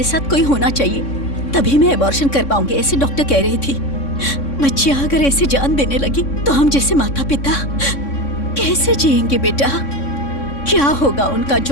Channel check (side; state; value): right; late; 3.6 ms